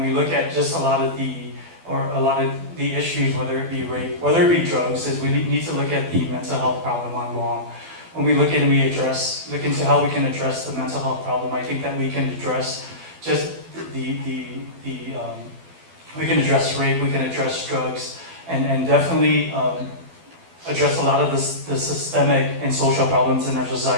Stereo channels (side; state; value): left; late; 12 ms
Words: look at just a lot of the issues, whether it be rape, whether it be drugs, is we need to look at the mental health problem on Guam. When we look and look into how we can address the mental health problem, I think that we can address just we can address rape, we can address drugs, and definitely address a lot of the systemic and social problems in our